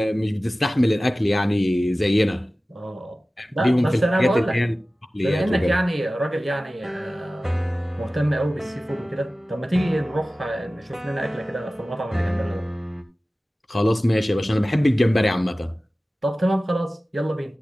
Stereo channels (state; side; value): normal; both; correlation 0.96